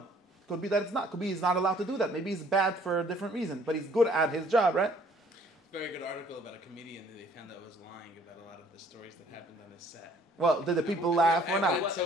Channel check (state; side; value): normal; both; correlation 0.58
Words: Could be that it's not. Could be he's not allowed to do that. Maybe he's bad for a different reason, but he's good at his job, right? Very good article about a comedian that they found out was lying about a lot of the stories that happened on his set. Well, did the people laugh or not? So